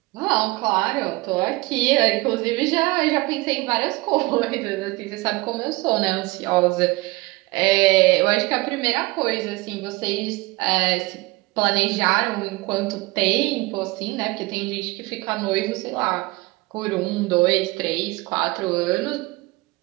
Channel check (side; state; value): left; quieter; 22.5 dB